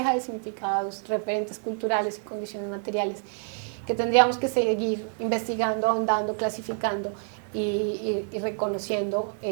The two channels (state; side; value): silent; left; 60 dB below the other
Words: de significados, referentes culturales y condiciones materiales que tendríamos que seguir investigando, ahondando, clasificando y reconociendo